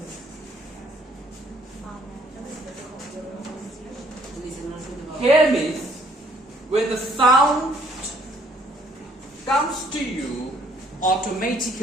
Hear means when the sound comes to you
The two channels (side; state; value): both; normal; correlation 0.63